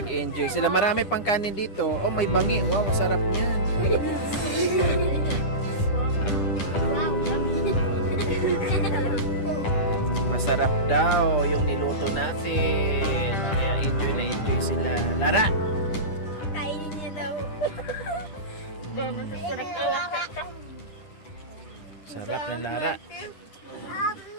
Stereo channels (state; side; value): late; right; 9.9 ms